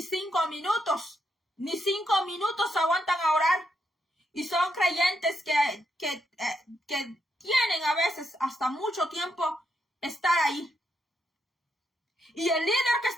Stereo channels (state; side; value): normal; both; correlation 0.80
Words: 5 minutos. Ni 5 minutos aguantan a orar. Y son creyentes que tienen a veces hasta mucho tiempo estar ahí. Y el líder que